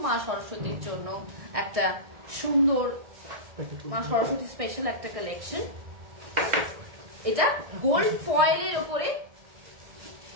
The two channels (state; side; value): late; left; 1.6 ms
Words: মা সরস্বতীর জন্য একটা সুন্দর মা সরস্বতী স্পেশাল একটা কালেকশন। এটা গোল্ড